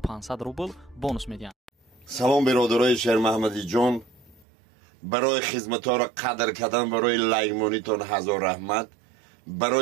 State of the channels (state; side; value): drops out; left; at 4.5 s